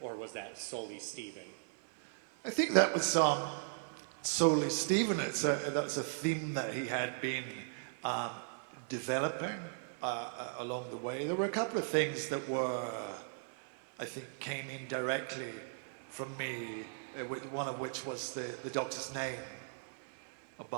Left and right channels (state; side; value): silent; left; 53 dB below the other